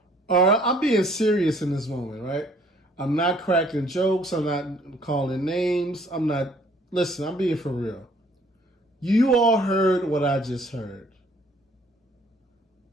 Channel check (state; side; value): normal; both; correlation 0.60